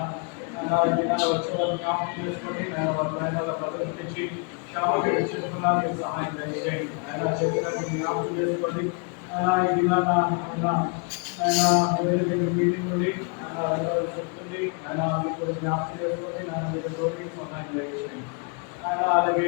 ఆయన ఈ దినాలు వచ్చే వారు జ్ఞాపకం చేసుకోండి. ఆయన వారి ప్రయాణాల ప్రదర్శించి క్షామకి చేసుకున్నాను మీరు సహాయం దయచేయండి. ఆయన చెప్పినట్టు జ్ఞాపకం చేసుకోండి. ఆయన ఈ దినాన ఆయన ఆయన వేరే దగ్గర మీటింగ్ ఉంది. ఆయన వెళ్ళవలసి వస్తుంది. ఆయన మీకు జ్ఞాపకం చేసుకోండి. ఆయన మీకు తోడి సహాయం దయచేయండి. ఆయన అలాగే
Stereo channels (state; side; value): quieter; right; 36.0 dB